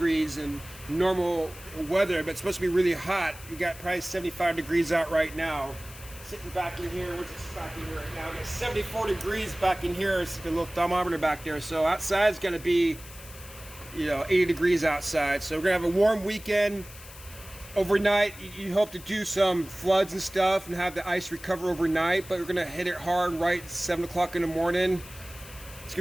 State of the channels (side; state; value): left; noise; hiss, 17 dB below the sound